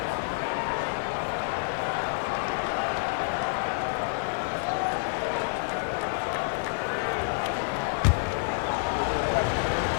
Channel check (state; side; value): silent; right; 59 dB below the other